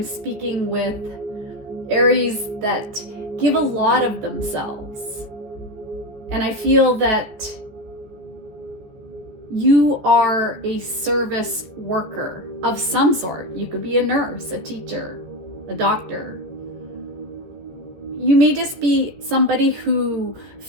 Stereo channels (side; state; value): left; late; 14 ms